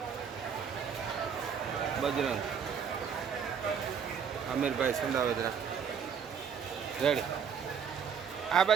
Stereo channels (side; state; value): left; quieter; 7.2 dB